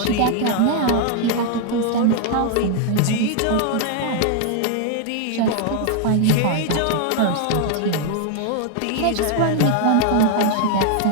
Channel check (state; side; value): different; both; correlation 0.00